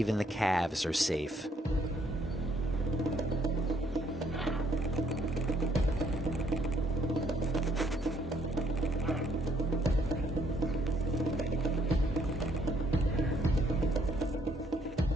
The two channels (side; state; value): both; normal; correlation 0.68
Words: the calves are safe.